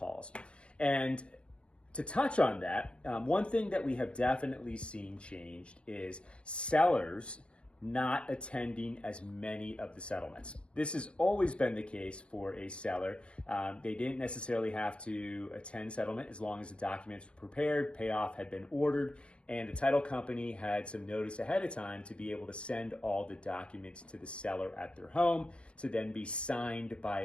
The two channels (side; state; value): right; late; 0.057 ms